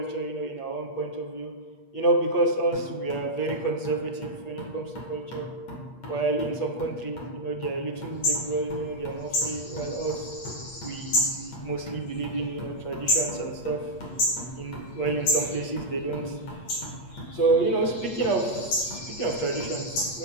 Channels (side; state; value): right; late; 8.5 ms